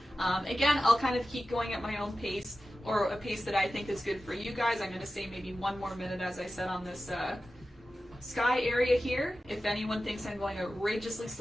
Again, I'll kind of keep going at my own pace, or a pace that I think is good for you guys. I'm going to say maybe 1 more minute, as I said, on this sky area here. If anyone thinks I'm going outrageously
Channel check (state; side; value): normal; both; correlation 0.94